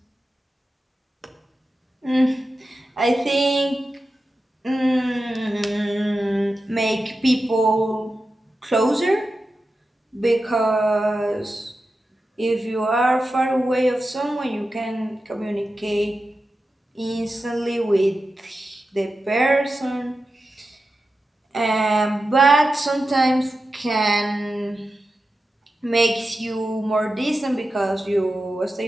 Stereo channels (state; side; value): normal; both; correlation 0.92